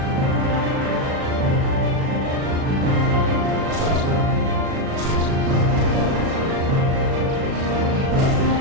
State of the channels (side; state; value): left; late; 37 ms